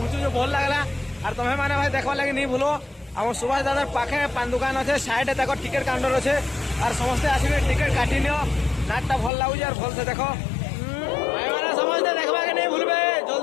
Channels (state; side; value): drops out; right; at 9.3 s